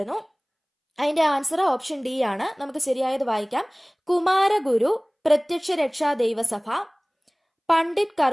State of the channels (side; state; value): both; identical; correlation 1.00